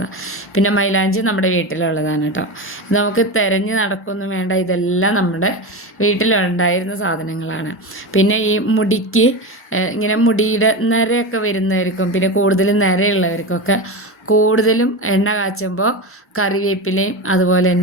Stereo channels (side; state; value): both; normal; correlation 0.21